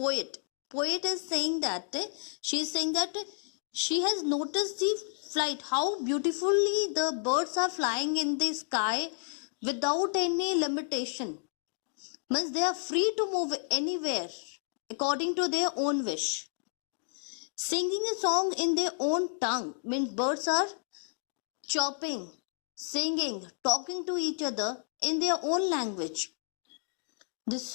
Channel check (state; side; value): silent; right; digital silence